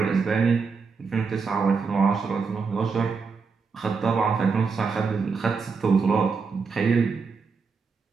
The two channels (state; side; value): quieter; left; 5.1 dB